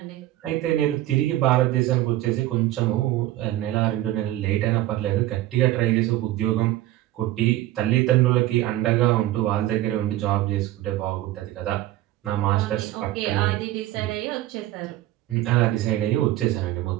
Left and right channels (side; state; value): left; quieter; 15.2 dB